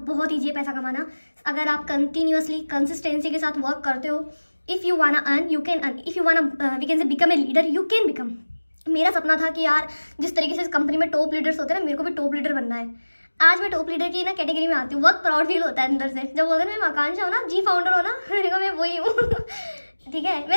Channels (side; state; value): both; inverted; correlation -1.00